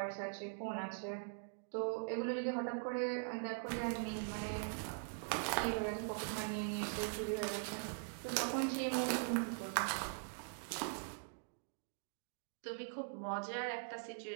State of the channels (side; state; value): left; silent; digital silence